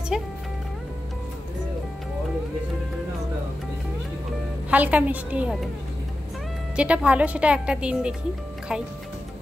হালকা মিষ্টি হবে, যেটা ভালো সেটা একটা দিন দেখি খাই।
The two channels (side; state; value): both; normal; correlation 0.92